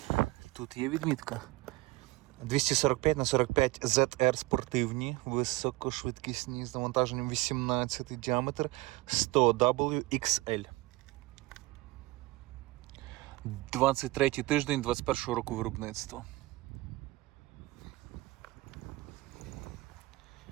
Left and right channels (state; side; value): quieter; left; 20.9 dB